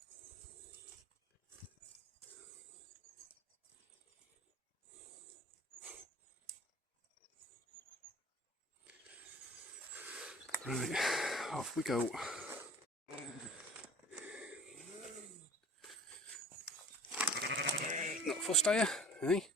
Right, off we go. Not fussed, are you? Eh?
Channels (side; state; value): both; normal; correlation 0.44